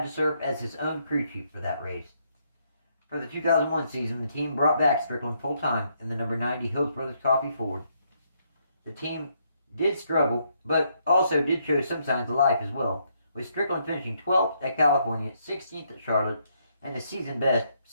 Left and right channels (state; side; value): inverted; both; correlation -0.74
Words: to serve as his own crew chief for that race. For the 2001 season, the team brought back Strickland full-time in the number 90 Hills Brothers Coffee Ford. The team did struggle, but also did show some signs of life as well, with Strickland finishing 12th at California, 16th at Charlotte, and the season best